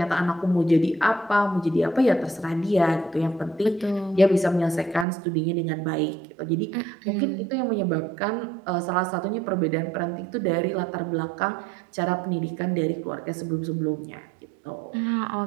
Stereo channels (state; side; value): drops out; left; at 5.1 s